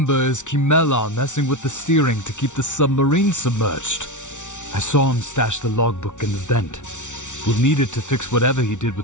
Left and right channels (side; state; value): right; late; 0.86 ms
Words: is Kimmelar messing with the steering to keep the submarine submerged. I saw him stash the logbook in the vent. We'll need it to fix whatever he did